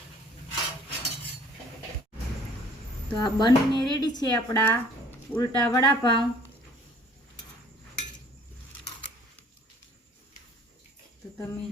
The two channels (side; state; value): both; normal; correlation 0.54